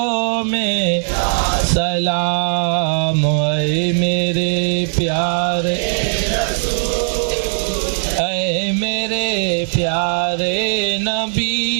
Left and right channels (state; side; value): silent; left; digital silence